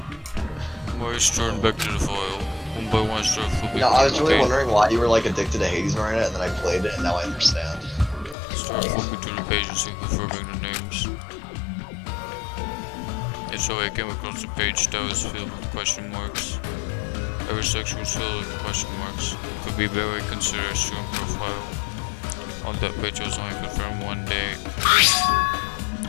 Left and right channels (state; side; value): drops out; right; at 8.3 s